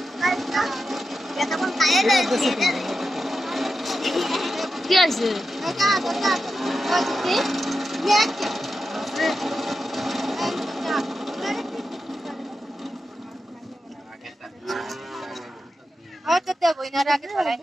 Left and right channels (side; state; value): both; normal; correlation 0.90